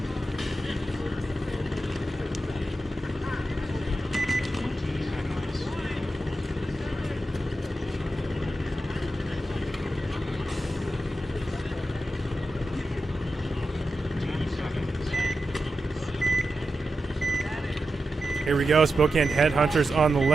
20 seconds. 10 seconds. Here we go. Spokane Headhunters on the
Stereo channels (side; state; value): both; normal; correlation 0.90